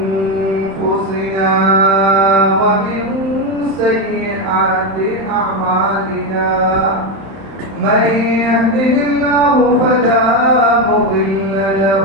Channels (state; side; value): late; left; 31 ms